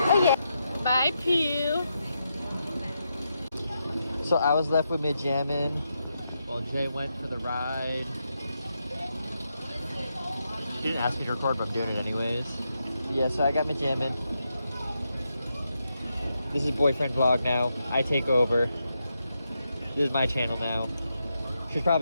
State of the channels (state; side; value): inverted; both; correlation -0.84